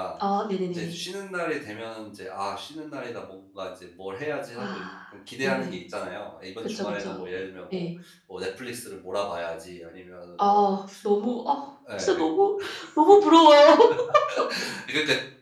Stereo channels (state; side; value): identical; both; correlation 1.00